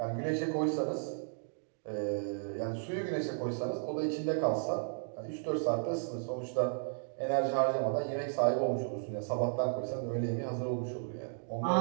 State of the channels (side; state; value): left; silent; digital silence